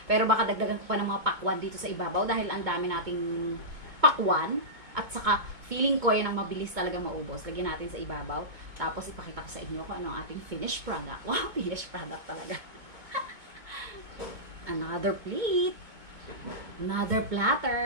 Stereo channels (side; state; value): left; late; 2.2 ms